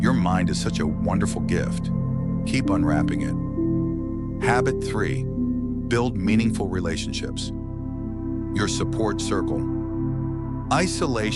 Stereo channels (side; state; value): both; identical; correlation 1.00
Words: mind is such a wonderful gift. Keep unwrapping it. Habit 3, build meaningful relationships. Your support circle.